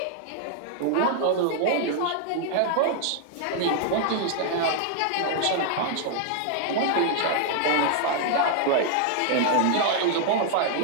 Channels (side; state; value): both; different; correlation 0.00